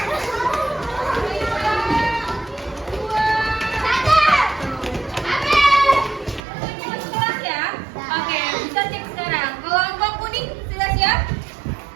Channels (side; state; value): left; drops out; at 6.4 s